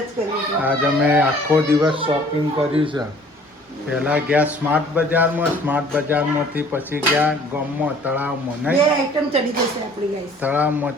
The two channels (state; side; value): normal; both; correlation 0.53